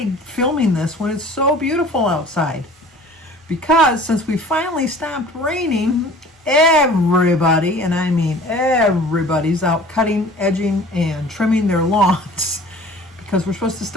filming this when it's so beautiful outside? Because since we finally stopped raining, everybody, and I mean everybody's out cutting, edging, and trimming their lawns because we're supposed to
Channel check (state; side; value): normal; both; correlation 0.46